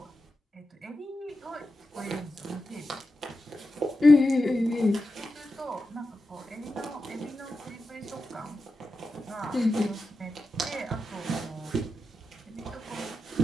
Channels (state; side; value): normal; both; correlation 0.90